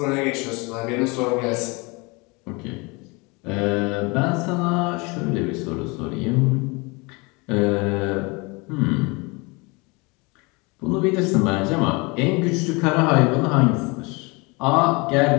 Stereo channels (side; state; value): right; quieter; 27.6 dB